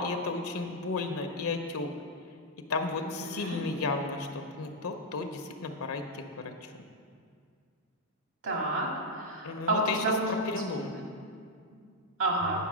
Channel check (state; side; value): normal; both; correlation -0.01